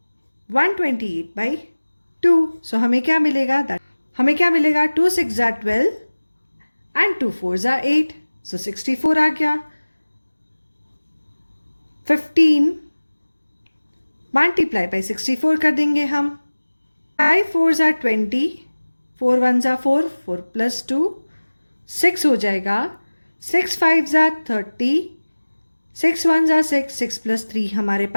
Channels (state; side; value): inverted; both; correlation -1.00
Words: 128 by 2. सो हमें क्या मिलेगा? हमें 2 6 are 12 एंड 2 4s are 8. सो 64 आ गया. 15 मल्टीप्लाई बाई 64 कर देंगे हम. 5 4s are 20. 4 1s are 4. 4 plus 2 6 हो जाएगा. 6 5s are 30. 6 1s are 6. 6 plus 3 हमारे